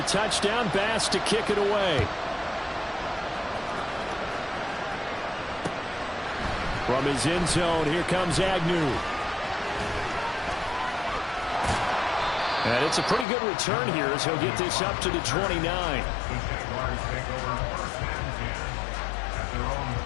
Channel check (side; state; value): right; drops out; at 13.2 s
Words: touchdown, Bass to kick it away. From his end zone, here comes Agnew. And it's a pretty good return here as he'll get this up to the 29.